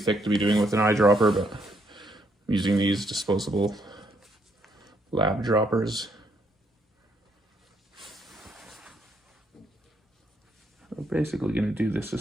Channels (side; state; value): both; normal; correlation 0.73